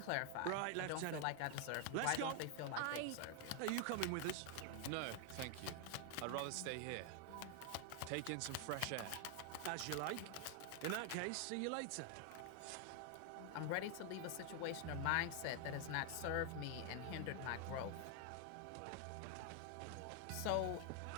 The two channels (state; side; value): different; both; correlation 0.00